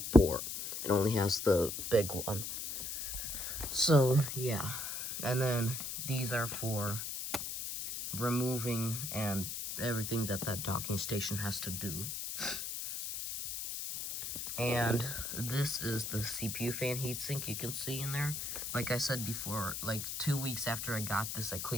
port. It only has the big one. So yeah, and then these are for removing and everything that docking station has to do. And this is the CPU fan heatsink you can see in there. Like I said before, like 2 weeks after I got this, I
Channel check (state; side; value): noise; left; hiss, 4 dB below the sound